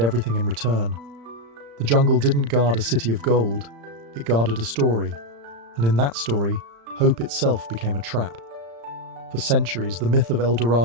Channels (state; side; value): late; left; 35 ms